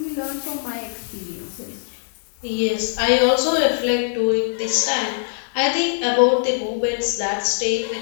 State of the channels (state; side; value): silent; right; digital silence